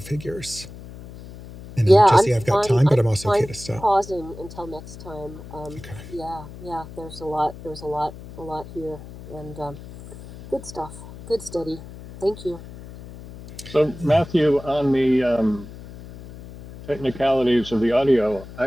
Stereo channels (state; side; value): noise; left; hum, 15 dB below the sound